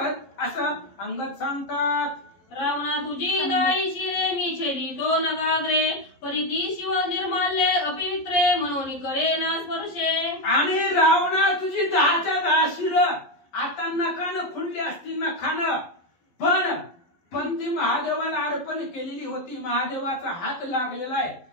असं अंगद सांगतात। रावणा तुझी दाई शिरे, मी छेदितो नगाग्रे, परिती शिव निर्माल्ये अपवित्रे, म्हणून करे ना स्पर्शे। आणि रावणा तुझी 10च्या 10 शिरं आता नखानं खुंडली असतील नखानं, पण ती महादेवाला अर्पण केलेली होती, महादेवाचा हात लागलेला आहे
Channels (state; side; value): late; right; 11 ms